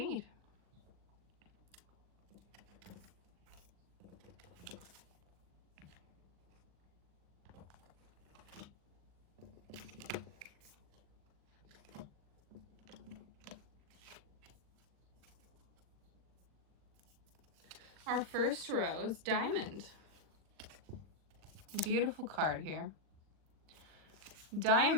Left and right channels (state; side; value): late; left; 39 ms